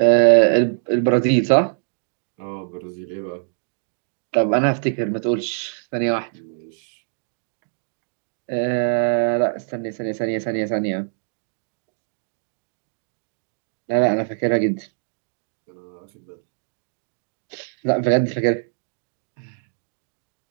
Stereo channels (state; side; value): silent; left; digital silence